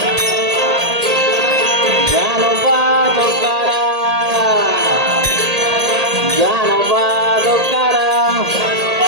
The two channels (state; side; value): late; left; 1.8 ms